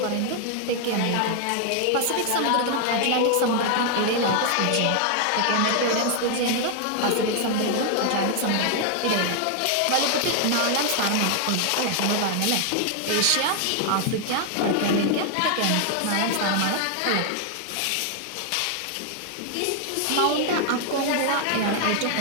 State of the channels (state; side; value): different; both; correlation 0.00